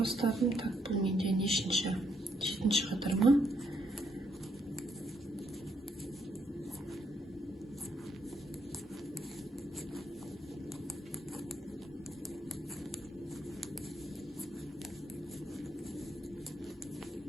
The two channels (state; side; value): normal; both; correlation 0.74